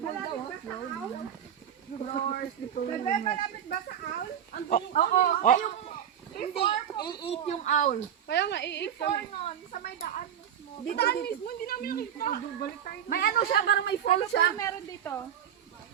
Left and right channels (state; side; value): quieter; left; 9.4 dB